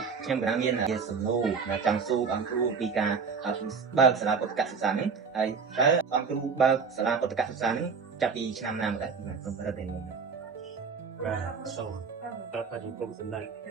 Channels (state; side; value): quieter; left; 5.5 dB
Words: ខ្ញុំកណ្ដាលមានជាសំណួរចង់សួរអង្គគ្រូពីការបើកសាលាពុទ្ធកសិក្សានេះហើយតើអង្គគ្រូបើកសាលាពុទ្ធកសិក្សានេះចាប់ពីឆ្នាំណាមកដែរខ្ញុំប្រហែលតែនេះបាទសូមតបទៅគុំសម្ដេច